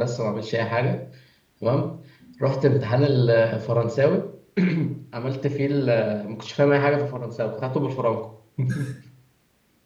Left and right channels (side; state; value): both; identical; correlation 1.00